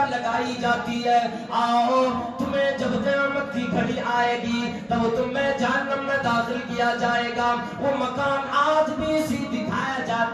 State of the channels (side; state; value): both; identical; correlation 1.00